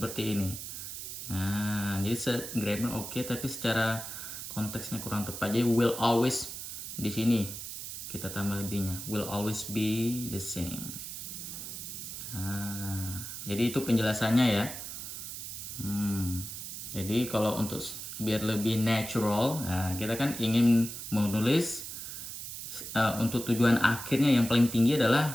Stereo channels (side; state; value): right; noise; hiss, 8 dB below the sound